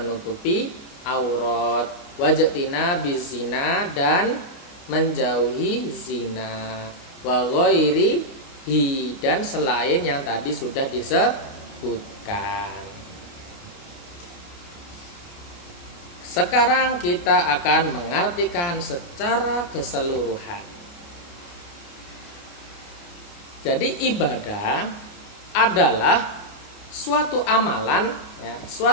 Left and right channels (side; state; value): right; late; 29 ms